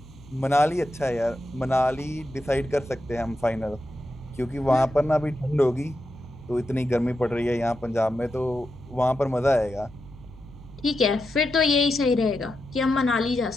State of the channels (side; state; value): left; noise; hum, 23 dB below the sound